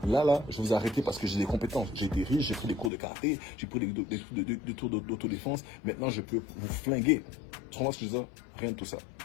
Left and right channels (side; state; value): right; drops out; at 2.9 s